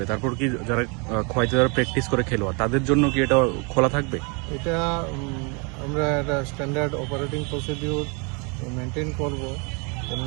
তারপর কি যারা খোয়াইতে যারা প্র্যাকটিস করে খেলোয়াড় তাদের জন্য কি এটা খোলা থাকবে? এটা আমরা একটা স্ট্যান্ডার্ড অপারেটিং প্রসিডিউর মেনটেন করব।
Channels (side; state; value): left; quieter; 32.9 dB